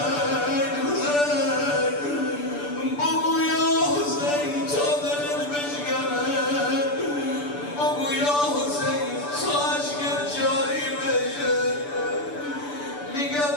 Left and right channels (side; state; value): right; late; 6.9 ms